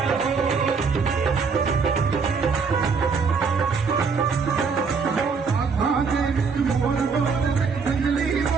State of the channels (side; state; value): left; quieter; 5.3 dB